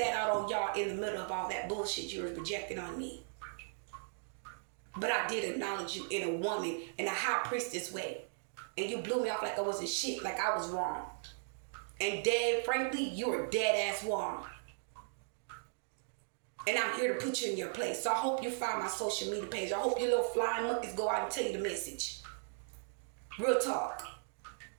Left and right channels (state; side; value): silent; left; digital silence